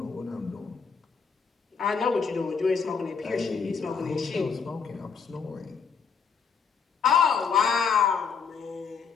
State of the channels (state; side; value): quieter; right; 6.0 dB